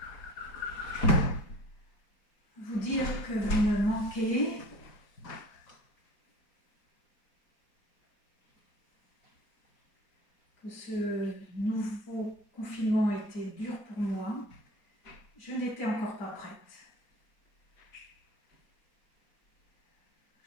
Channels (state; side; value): late; right; 4.9 ms